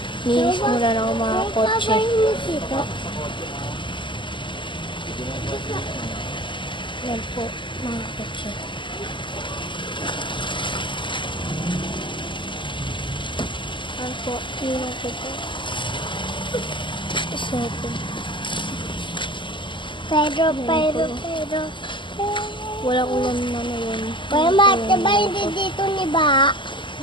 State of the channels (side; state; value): right; late; 0.24 ms